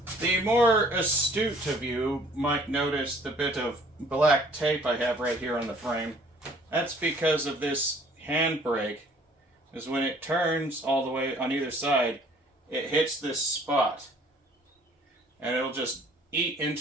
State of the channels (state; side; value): normal; both; correlation 0.56